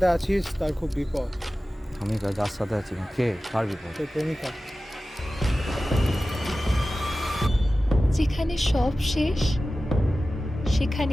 আছিস তার খুব বিপদ। আমি যার সাথে আছি কে, কার বিপদ? তোর প্রেমিকা। যেখানে সব শেষ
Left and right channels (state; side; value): normal; both; correlation 0.95